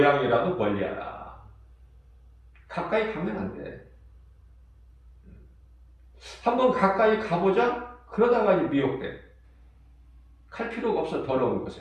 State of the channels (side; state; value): both; identical; correlation 1.00